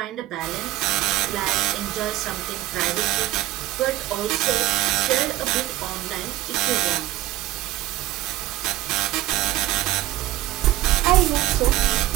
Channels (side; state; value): left; quieter; 15.7 dB